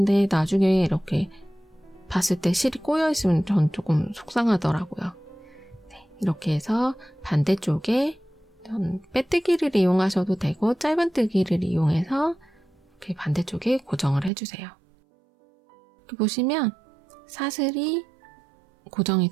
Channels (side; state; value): left; drops out; at 14.3 s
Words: 나중에 이렇게 봤을 때 실이 꼬여있으면 전 조금 속상하더라고요. 네, 이렇게 해서 반대쪽에 빼뜨기를 이용하셔도 되고 짧은뜨기를 이용해서 이렇게 반대쪽에 고정을 해주세요. 이렇게 보시면 사슬이 고정이